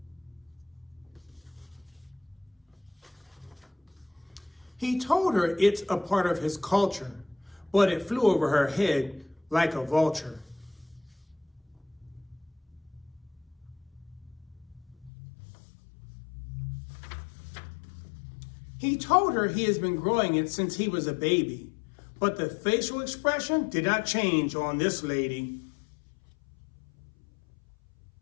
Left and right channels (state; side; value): drops out; right; at 15.1 s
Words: He told her it's a part of his culture, but it flew over her head like a vulture. He told her he has been growing it since he was a baby, but the facial expression did not change on this lady.